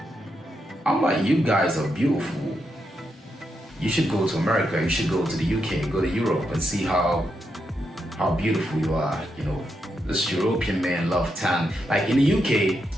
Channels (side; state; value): both; normal; correlation 0.83